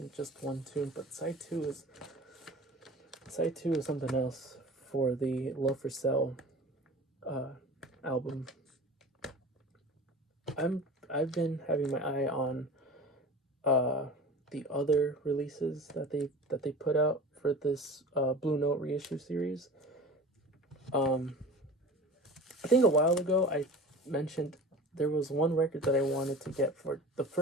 just one tune. But side 2 is something else for the Love for Sale album. I've been having my eye on the other releases that they put out for this Blue Note reissue series. I think a while ago I mentioned there was one record that I wanted to get for the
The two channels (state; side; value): normal; both; correlation 0.37